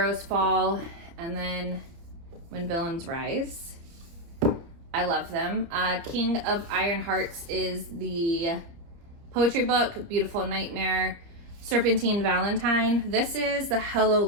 Fall and then When Villains Rise. I love them. King of Iron Hearts is the poetry book. Beautiful Nightmare. Serpentine Valentine. This is the Hello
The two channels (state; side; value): late; left; 29 ms